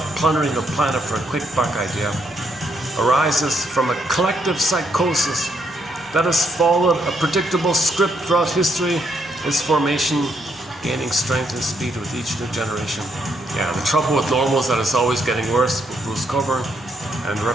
plundering the planet for a quick buck idea arises from a collective psychosis that has followed a predictable script throughout history, its formation gaining strength and speed with each new generation. Yeah, the trouble with normal is that it's always getting worse with Bruce Coburn, and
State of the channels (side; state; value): both; normal; correlation 0.74